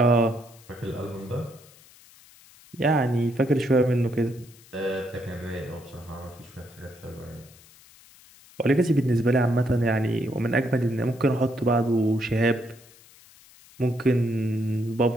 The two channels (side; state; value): left; noise; hiss, 25 dB below the sound